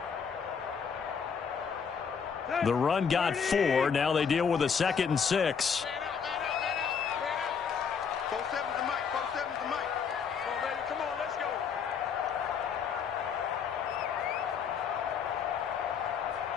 The run got 4. Now they deal with a 2nd and 6. 4-7's the mic. 4-7's the mic. Come on, baby. Come on, let's go.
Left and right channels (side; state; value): right; quieter; 6.5 dB